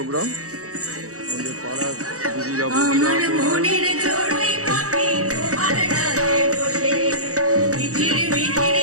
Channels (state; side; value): late; left; 0.65 ms